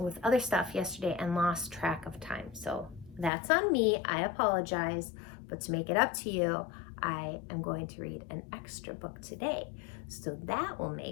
other stuff yesterday and lost track of time. So that's on me. I apologize. But to make it up to you, I am going to read an extra book today. So that will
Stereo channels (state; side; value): drops out; right; at 3.3 s